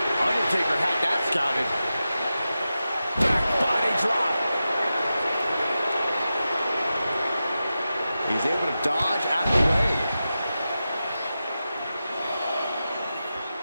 Undertaker had that scouted. Back body drop. He's able to dodge out of the way.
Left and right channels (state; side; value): inverted; both; correlation -0.92